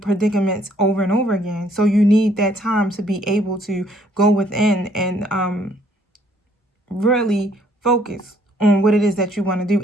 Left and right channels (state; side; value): normal; both; correlation 0.64